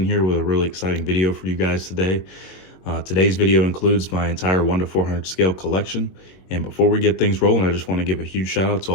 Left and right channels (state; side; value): late; right; 22 ms